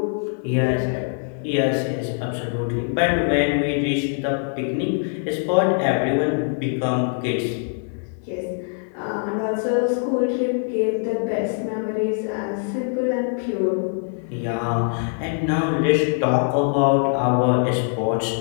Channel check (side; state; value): right; silent; 64 dB below the other